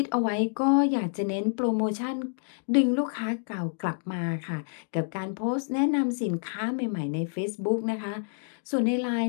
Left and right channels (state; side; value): silent; right; digital silence